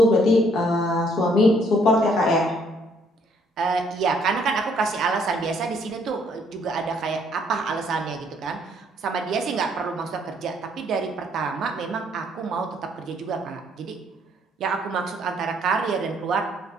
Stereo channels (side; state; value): both; normal; correlation 0.66